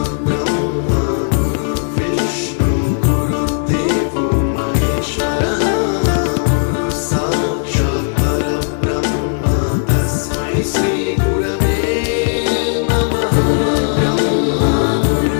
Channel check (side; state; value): right; silent; digital silence